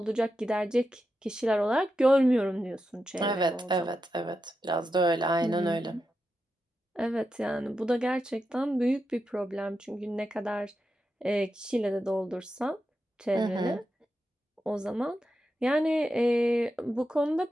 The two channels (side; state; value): both; normal; correlation 0.88